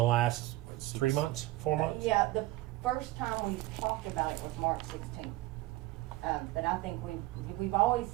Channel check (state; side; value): quieter; left; 17.9 dB